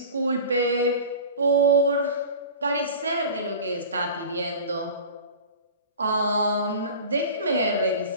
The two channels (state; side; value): inverted; both; correlation -0.36